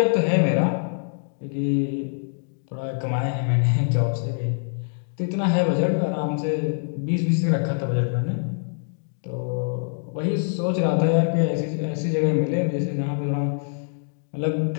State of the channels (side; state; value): right; silent; digital silence